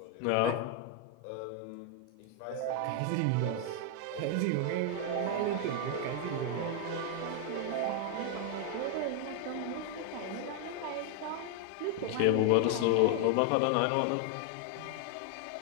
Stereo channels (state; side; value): different; both; correlation 0.01